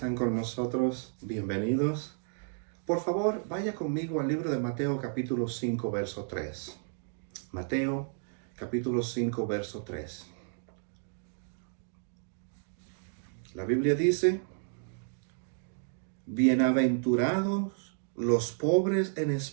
con nosotros. Bienvenidos. Por favor, vaya conmigo al libro de Mateo capítulo 5, verso 3. Mateo capítulo 5, verso 3. La Biblia dice, bienaventurados los pobres en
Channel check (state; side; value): silent; left; digital silence